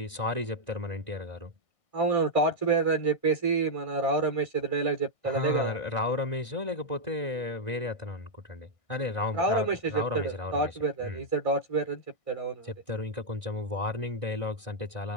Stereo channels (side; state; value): right; late; 1.6 ms